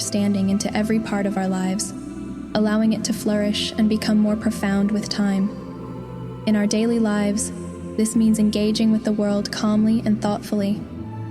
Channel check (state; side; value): identical; both; correlation 1.00